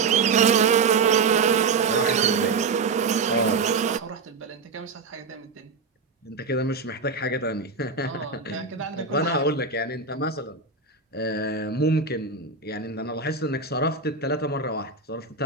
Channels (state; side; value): quieter; left; 4.6 dB